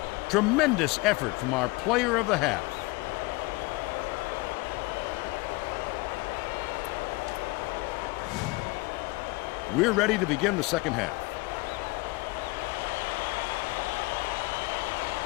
Tremendous effort from our player of the half. We're ready to begin the second half.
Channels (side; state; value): right; quieter; 23.9 dB